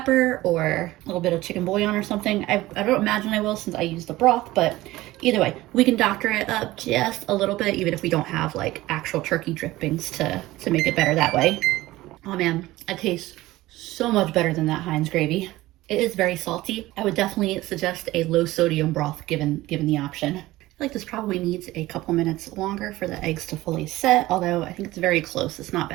or a little bit of chicken bouillon or something, I don't imagine I will since I used the broth, but either way, we can doctor it up just a little bit, even if we don't have like actual turkey drippings to make it better that way. Oh man, it tastes so much better than that Heinz gravy. It is very salty. I would definitely suggest a low sodium broth given the option. I feel like this probably needs a couple minutes longer for the eggs to fully set, although I think it's very close. It's not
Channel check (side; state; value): left; quieter; 17.6 dB